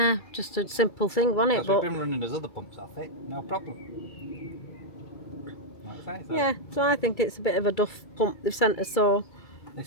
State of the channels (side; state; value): right; late; 2.3 ms